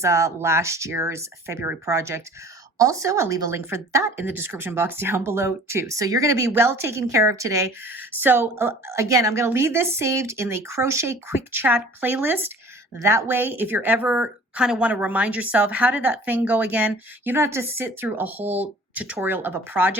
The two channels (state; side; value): normal; both; correlation 0.47